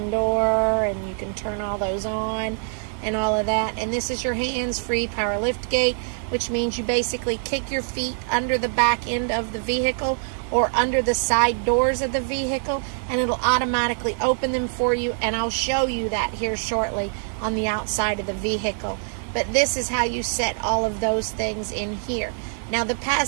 door, and you can turn all those on and all of that. And this is your hands-free power lift gate, which means you basically kick your feet under the back end of the vehicle or under the side doors of the vehicle, and it'll automatically open them for you, and I'll show you that here shortly on the outside of the vehicle. But this is how you set all of those things in here. Now the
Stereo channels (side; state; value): left; silent; 63 dB below the other